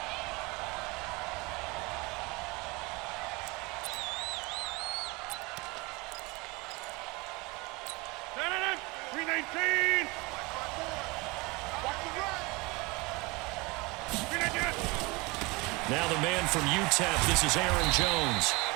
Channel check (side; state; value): left; quieter; 25.5 dB